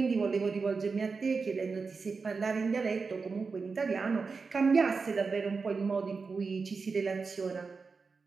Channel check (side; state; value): left; quieter; 4.7 dB